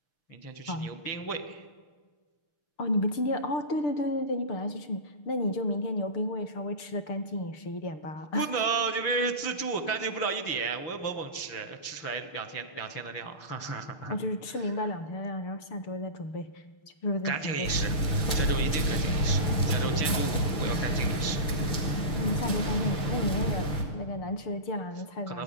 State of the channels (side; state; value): right; late; 6.6 ms